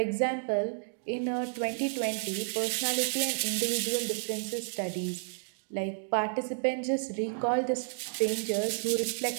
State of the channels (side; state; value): left; silent; digital silence